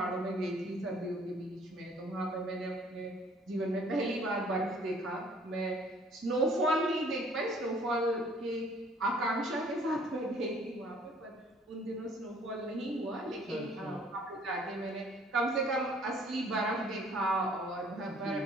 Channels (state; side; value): normal; both; correlation 0.58